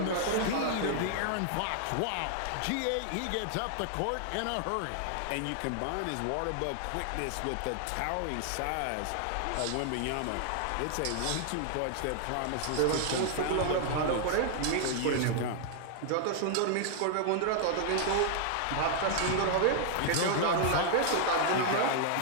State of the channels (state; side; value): different; both; correlation 0.00